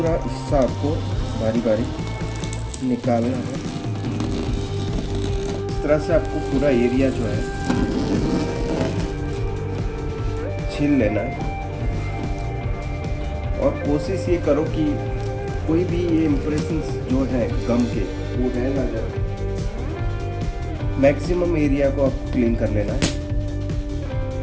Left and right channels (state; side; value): identical; both; correlation 1.00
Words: हिस्सा आपको बारी बारी निकालना है। इस तरह से आपको पूरा एरिया जो है छील लेना है, और कोशिश ये करो कि कोई भी ये इम्प्रेशंस जो है गम के वो रह ना जाए। मैक्सिमम एरिया को आप क्लीन कर लेना है।